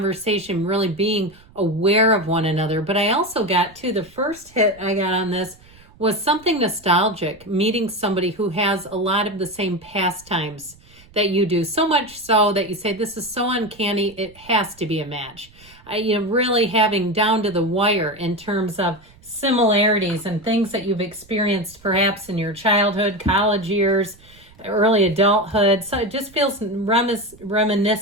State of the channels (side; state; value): right; noise; rumble, 26 dB below the sound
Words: really being aware of one another. But I also got to the first hit I got on this was something nostalgic, meeting somebody who has a lot of the same pastimes that you do, so much so that you say, this is so uncanny, it has to be a match. Really having down to the wire in terms of similarities and things that you've experienced perhaps in your childhood, college years, early adulthood. So it just feels